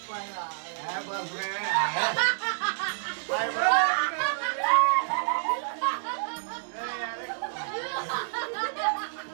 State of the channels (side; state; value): left; silent; digital silence